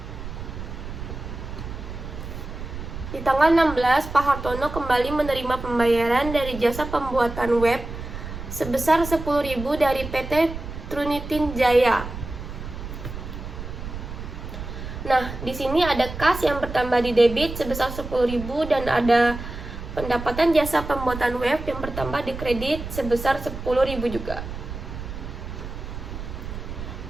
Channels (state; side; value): noise; right; rumble, 9 dB below the sound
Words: Di tanggal 16, Pak Hartono kembali menerima pembayaran dari jasa pembuatan web sebesar 10.000 dari PT Trunitin Jaya. Nah, di sini ada kas yang bertambah di debit sebesar 10.000 dan ada pendapatan jasa pembuatan web yang bertambah di kredit sebesar 10.000 juga.